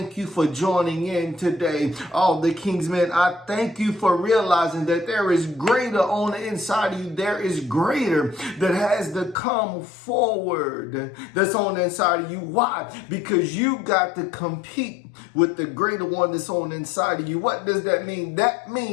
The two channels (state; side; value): drops out; right; at 9.3 s